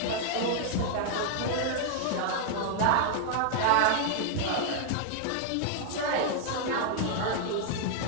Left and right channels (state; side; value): different; both; correlation 0.00